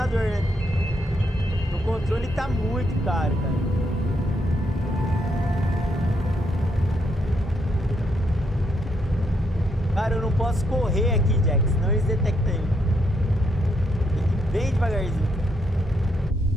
né? O controle tá muito caro, cara. Cara, eu não posso correr aqui, Jack, senão eles detectam eu. Tem que ir bem devagarzinho.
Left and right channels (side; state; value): both; normal; correlation 0.77